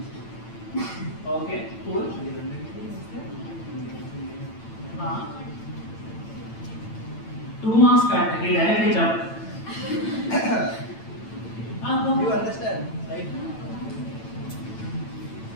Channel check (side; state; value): right; late; 9.0 ms